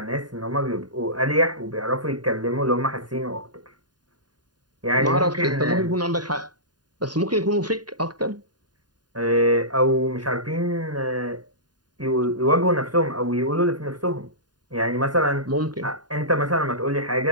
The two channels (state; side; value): late; left; 0.70 ms